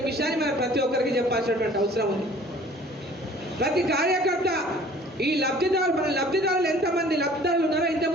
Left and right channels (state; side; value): normal; both; correlation 0.51